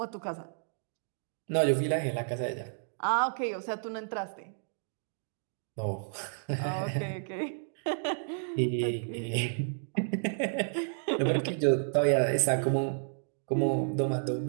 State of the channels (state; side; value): silent; left; digital silence